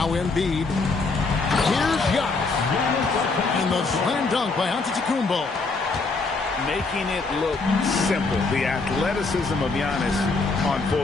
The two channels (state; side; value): quieter; right; 3.9 dB